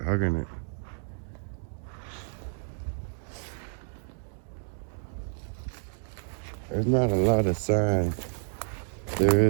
hugging it. There's not a lot of sign. There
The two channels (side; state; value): left; silent; digital silence